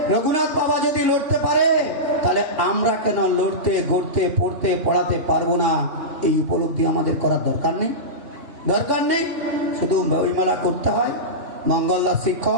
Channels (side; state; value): left; late; 3.5 ms